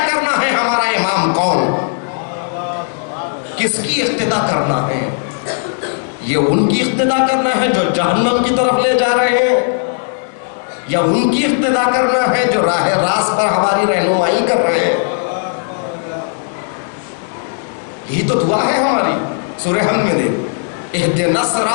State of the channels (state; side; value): silent; right; digital silence